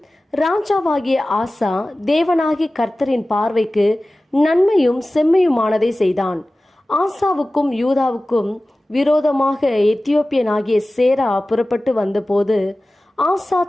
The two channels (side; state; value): both; normal; correlation 0.97